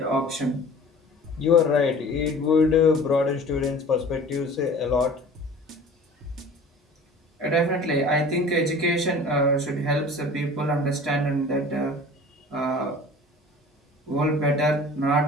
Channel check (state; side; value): normal; both; correlation 0.43